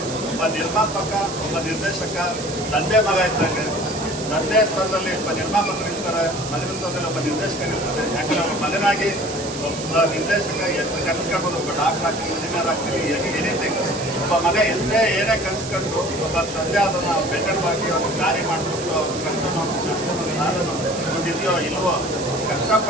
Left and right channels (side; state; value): right; noise; hiss, 10 dB below the sound